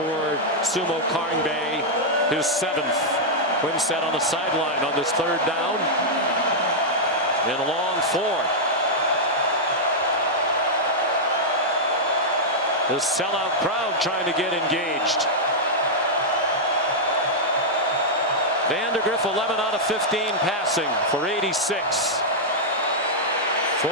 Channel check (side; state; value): both; normal; correlation -0.06